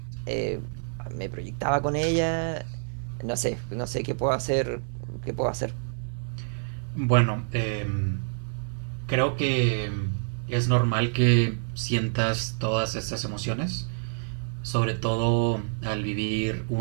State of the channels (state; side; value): silent; left; 55 dB below the other